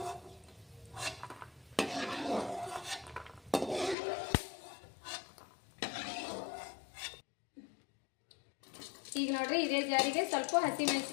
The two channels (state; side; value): drops out; right; at 4.0 s